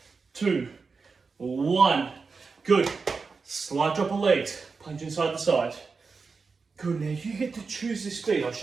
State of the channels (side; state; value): left; quieter; 4.7 dB